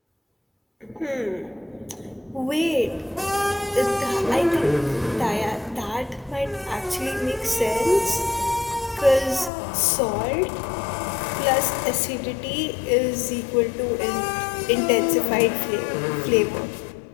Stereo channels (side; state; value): right; drops out; at 9.5 s